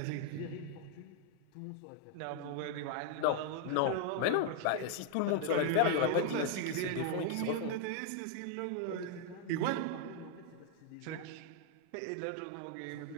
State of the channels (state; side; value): different; both; correlation 0.00